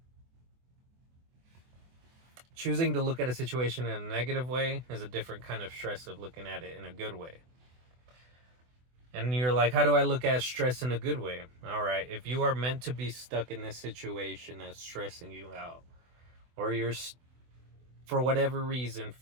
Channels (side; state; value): left; late; 24 ms